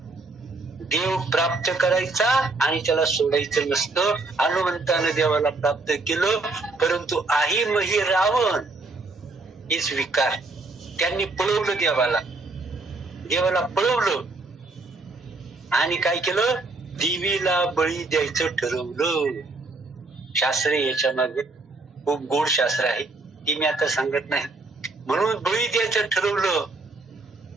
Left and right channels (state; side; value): quieter; left; 3.4 dB